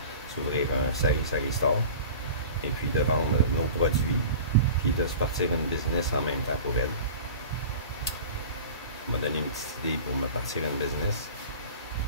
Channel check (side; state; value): both; inverted; correlation -0.38